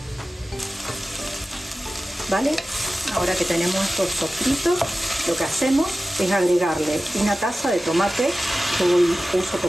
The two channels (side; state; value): both; normal; correlation 0.95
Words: ¿Vale? Ahora que tenemos estos sofritos, lo que hacemos es agregarle una taza de tomate. Yo uso